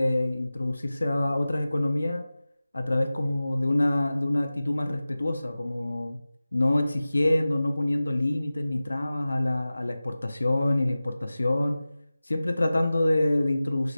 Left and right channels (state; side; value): inverted; both; correlation -0.97